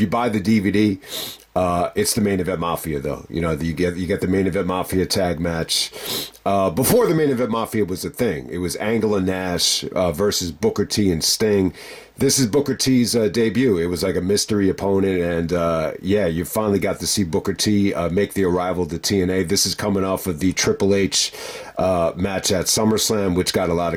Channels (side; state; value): both; identical; correlation 1.00